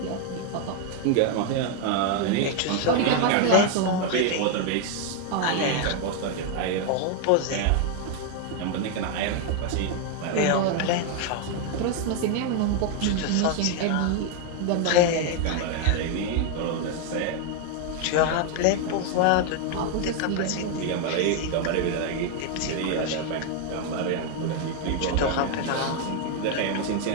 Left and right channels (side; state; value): both; different; correlation 0.01